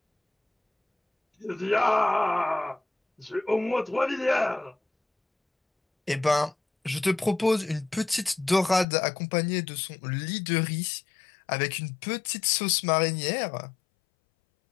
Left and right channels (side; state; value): right; drops out; at 8.8 s